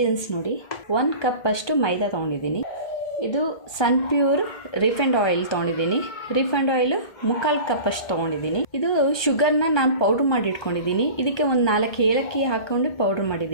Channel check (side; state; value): right; late; 1.3 ms